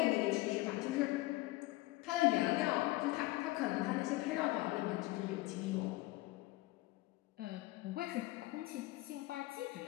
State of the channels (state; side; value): quieter; right; 19.8 dB